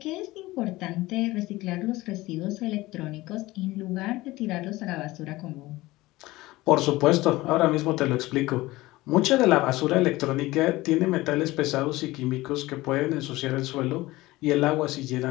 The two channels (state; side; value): quieter; right; 19.0 dB